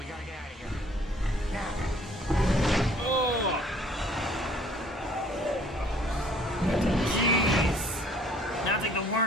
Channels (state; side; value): normal; both; correlation 0.57